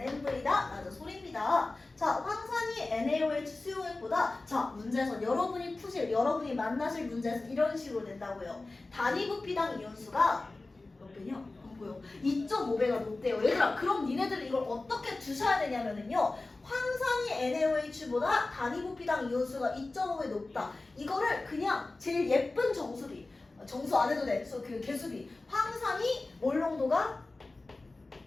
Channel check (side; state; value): right; quieter; 3.2 dB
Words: 라는 소리입니다. 자, 황산이 NaOH 수용액보다 자, 문제에서 여러분이 만나실 문제에서 이런 식으로 된다고요. 단위 부피당 이온수가 몇 배냐? 안 보여. 2.5배가 높대요. 얘들아, 그럼 니네들은 이걸 어떻게 두셔야 되냐면은요. 황산이 NaOH보다 단위 부피당 이온수가 2.5배 높다. 이거를 그냥 제일 예쁜 정수 안 해도 돼. 그 개수비. 황산이 몰 농도가